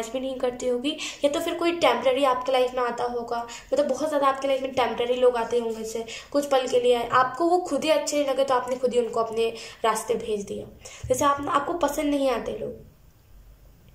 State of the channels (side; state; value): both; identical; correlation 1.00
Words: भी नहीं करती होगी, या तो फिर कोई टेम्प्रेरी आपके लाइफ में आता होगा। मतलब बहुत ज़्यादा आपके लाइफ में टेम्प्रेरी लोग आते होंगे, जैसे कुछ पल के लिए आपको वो खुद ही अच्छे नहीं लगे तो आपने खुद ही उनको अपने रास्ते भेज दिया। जैसे आपको पसंद नहीं आते लोग।